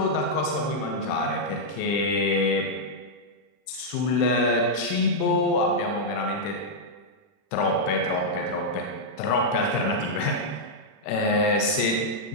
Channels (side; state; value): right; late; 40 ms